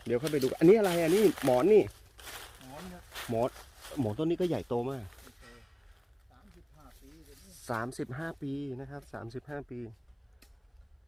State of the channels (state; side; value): identical; both; correlation 1.00